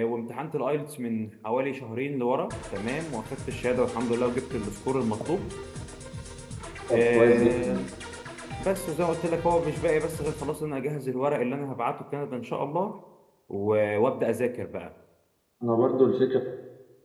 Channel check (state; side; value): identical; both; correlation 1.00